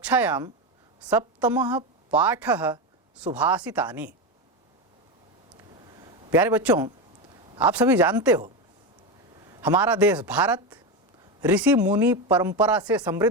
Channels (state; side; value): normal; both; correlation 0.15